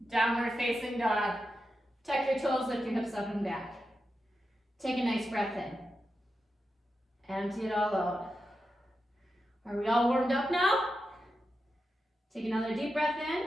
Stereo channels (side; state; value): both; normal; correlation 0.89